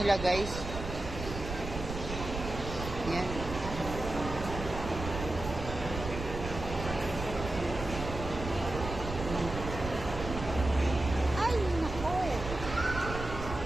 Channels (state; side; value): noise; right; rumble, 7 dB below the sound